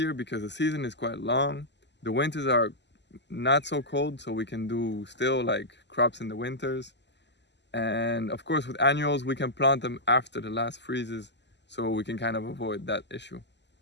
because the season is quite long. The winters are not so cold, so we can do still like crops in the winters. And of course with annuals we can plant them after the last freezes, so we can kind of avoid that issue.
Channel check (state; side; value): late; right; 0.51 ms